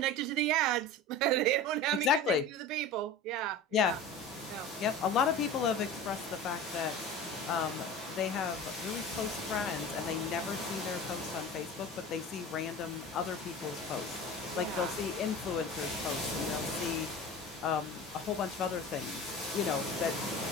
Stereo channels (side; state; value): both; normal; correlation 0.34